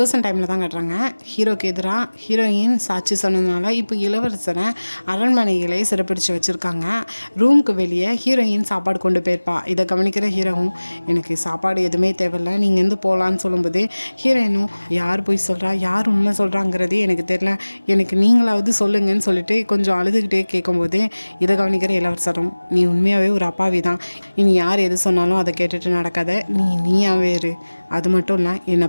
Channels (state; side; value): inverted; both; correlation -1.00